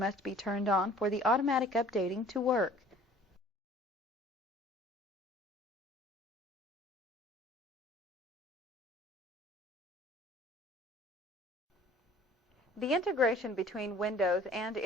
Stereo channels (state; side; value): normal; both; correlation 0.51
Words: be turned on for the automatic updating to work. The integration between Windows and